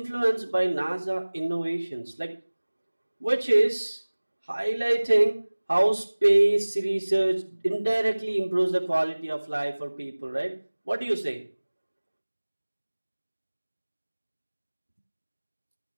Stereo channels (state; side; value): inverted; both; correlation -1.00